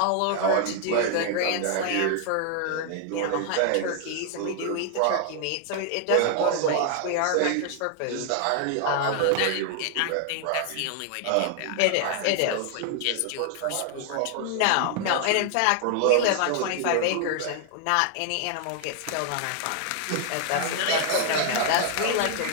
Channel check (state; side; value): different; both; correlation 0.00